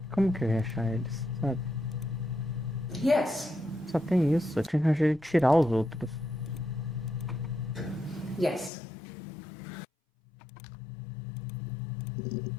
Como que eu ia achar eles, sabe? Yes. Só tem isso. Eu tinha que arranjar ele tirar os outros. Yes.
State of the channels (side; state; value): right; drops out; at 8.7 s